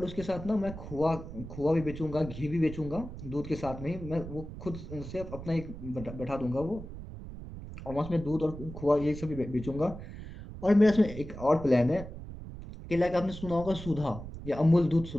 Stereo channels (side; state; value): right; noise; rumble, 11 dB below the sound